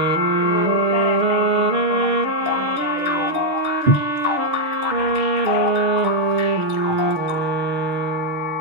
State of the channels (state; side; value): late; left; 6.3 ms